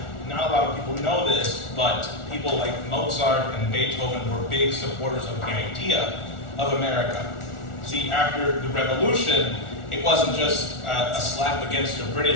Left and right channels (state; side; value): late; right; 1.4 ms